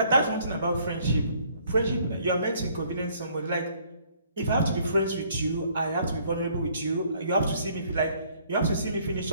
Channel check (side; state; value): both; inverted; correlation -0.62